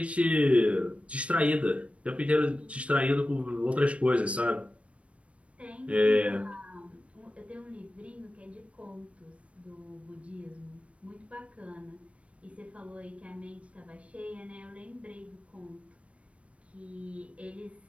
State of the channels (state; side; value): late; left; 0.063 ms